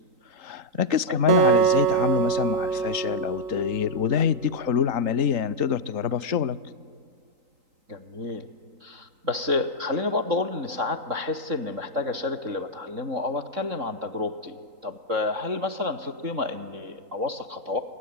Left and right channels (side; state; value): left; late; 3.8 ms